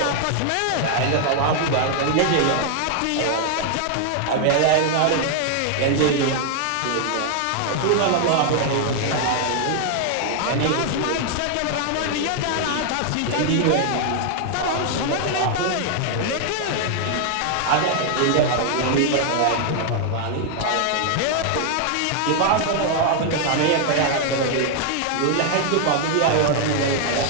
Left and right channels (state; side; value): different; both; correlation 0.00